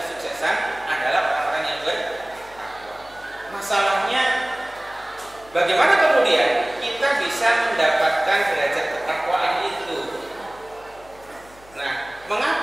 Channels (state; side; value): noise; left; hum, 25 dB below the sound